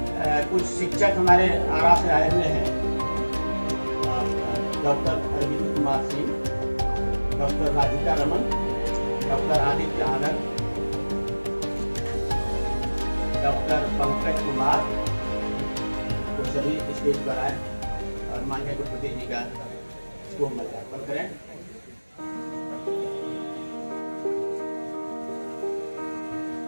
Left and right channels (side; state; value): both; inverted; correlation -1.00